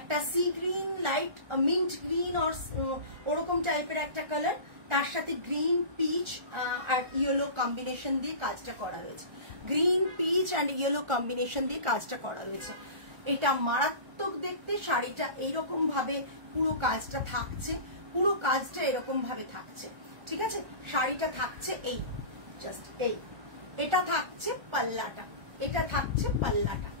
sea green, light mint green ওরকম টাইপের একটা কালার, তার সাথে গ্রিন পিচ আর ইয়েলো কম্বিনেশন দিয়ে কাজটা করা রয়েছে। Green peach and yellow combination দিয়ে কাজটা করা রয়েছে। এটা মারাত্মক দেখতে। শাড়িটা এইরকম ভাবে পুরো কাজটা থাকছে, পুরো কাজটা এরকম ভাবে থাকছে, ঠিক আছে। শাড়িটা থাকছে এই জাস্ট এই, এটা থাকছে পাল্লাটা, এটা থাকছে পাল্লাটা,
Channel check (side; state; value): left; late; 1.4 ms